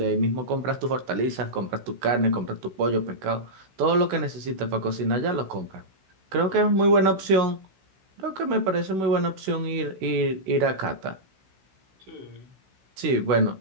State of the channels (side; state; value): left; late; 16 ms